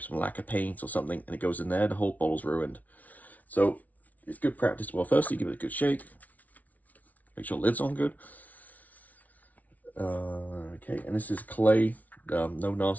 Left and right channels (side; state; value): right; late; 0.073 ms